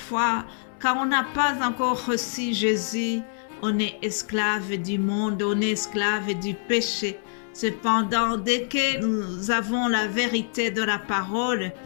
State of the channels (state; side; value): silent; right; 59 dB below the other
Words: quand on n'a pas encore reçu Jésus, on est esclave du monde, on est esclave du péché. Cependant, dès que nous avons la vérité de la parole,